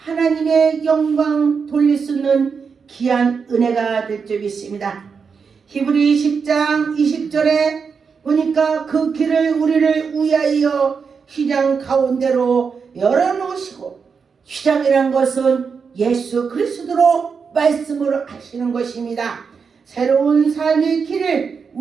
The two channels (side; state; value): left; quieter; 5.7 dB